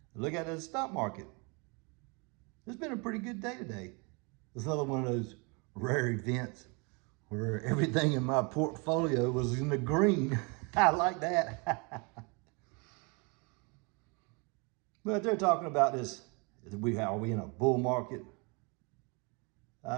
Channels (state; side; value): quieter; left; 31.4 dB